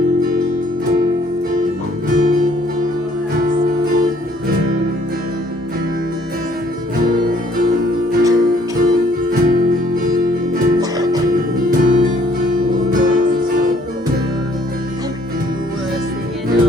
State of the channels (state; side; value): normal; both; correlation 0.62